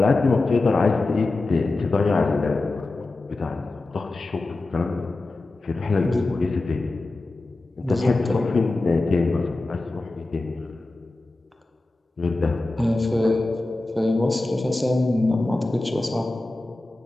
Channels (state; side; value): quieter; right; 3.0 dB